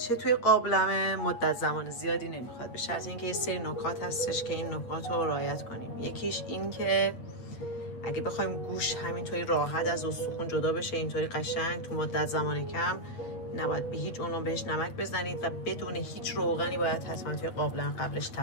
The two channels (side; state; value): right; late; 8.6 ms